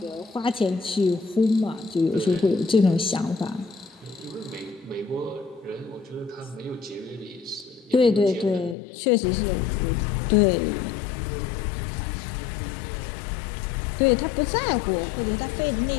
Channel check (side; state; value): right; drops out; at 8.8 s